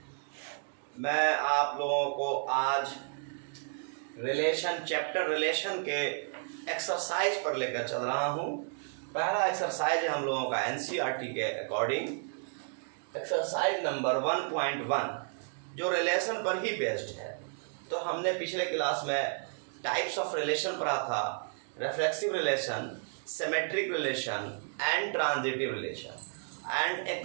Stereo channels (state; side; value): silent; left; 56 dB below the other